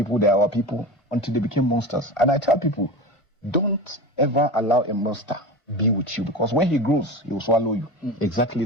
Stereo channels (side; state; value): right; late; 1.5 ms